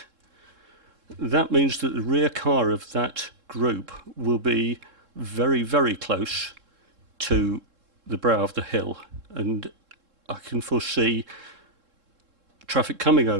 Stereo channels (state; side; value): late; left; 3.7 ms